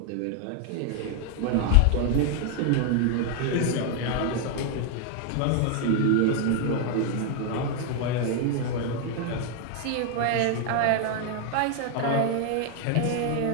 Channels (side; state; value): both; different; correlation 0.00